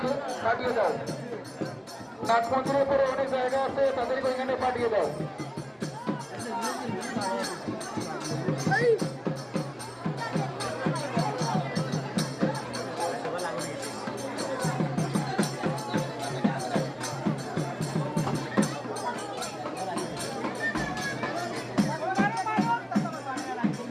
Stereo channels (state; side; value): identical; both; correlation 1.00